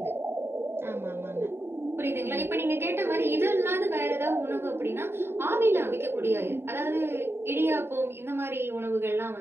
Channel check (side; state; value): left; late; 0.11 ms